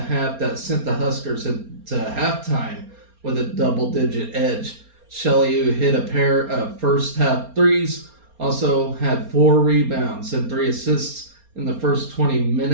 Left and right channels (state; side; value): late; left; 4.3 ms